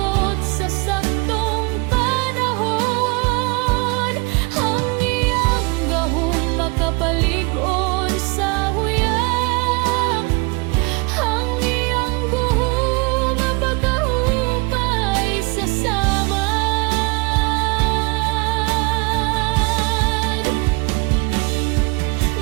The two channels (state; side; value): quieter; left; 28.4 dB